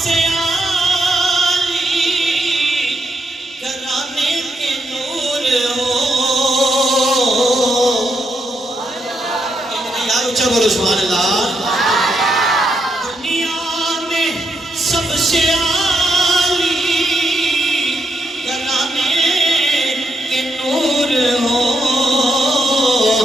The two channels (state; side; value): normal; both; correlation 0.80